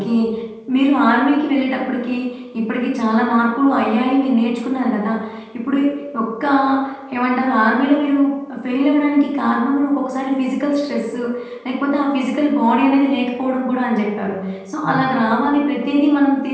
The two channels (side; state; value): both; identical; correlation 1.00